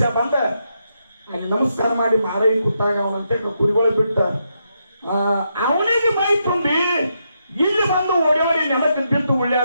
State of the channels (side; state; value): both; inverted; correlation -0.82